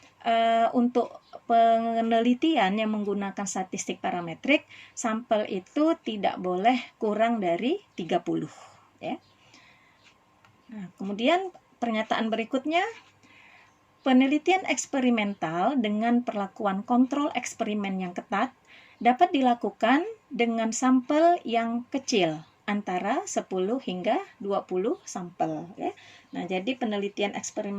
untuk penelitian yang menggunakan statistik parametrik, sampel itu tidak boleh kurang dari 30 ya. Nah, kemudian pernyataan berikutnya, penelitian eksperimental dengan perlakuan kontrol eksperimen yang ketat dapat dilakukan dengan sampel yang kecil, antara 10 hingga 20 sampel ya. Nah, jadi penelitian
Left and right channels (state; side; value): identical; both; correlation 1.00